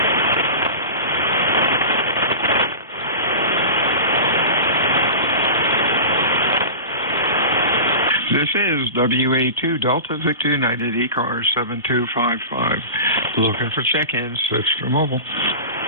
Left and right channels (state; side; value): inverted; both; correlation -0.31